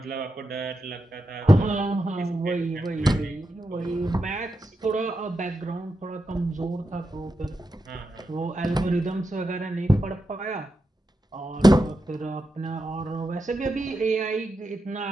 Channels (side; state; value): both; normal; correlation 0.87